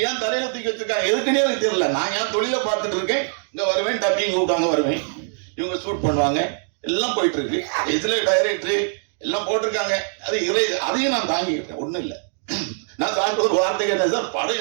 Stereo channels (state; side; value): silent; left; digital silence